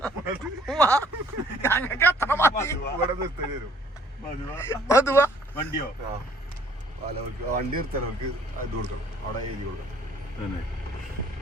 ഞങ്ങൾക്ക് അത്ര മതി. മധുവ വണ്ടിയോ? വണ്ടി നിർത്തലവർക്ക് ഇത് കൊടുക്കണം. അവിടെ എഴുതി കൊടുക്കണം.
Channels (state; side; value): normal; both; correlation 0.60